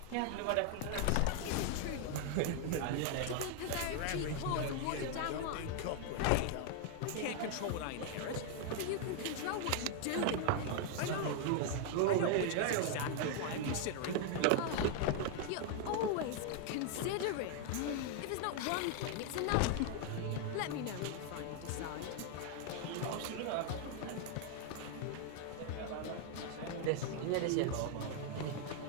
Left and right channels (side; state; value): both; different; correlation 0.00